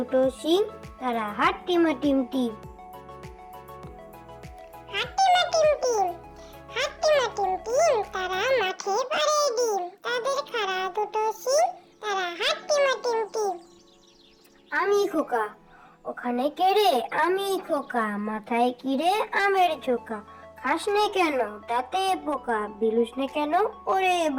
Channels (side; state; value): both; identical; correlation 1.00